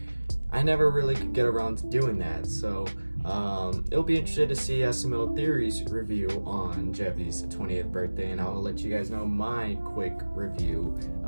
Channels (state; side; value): inverted; both; correlation -1.00